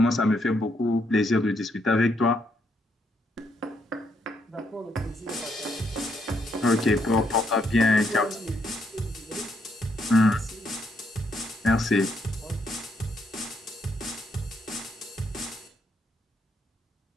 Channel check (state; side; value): normal; both; correlation 0.75